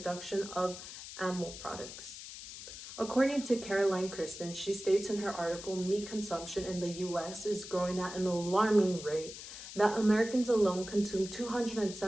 of animal products. According to Caroline Kristen, she states in her article, "Meat consumption in the US is growing at an alarming rate, that Americans alone consume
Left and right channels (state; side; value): noise; left; hiss, 12 dB below the sound